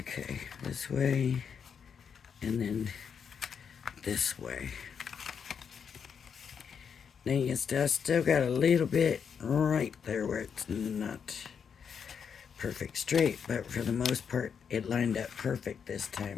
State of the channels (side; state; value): right; quieter; 7.0 dB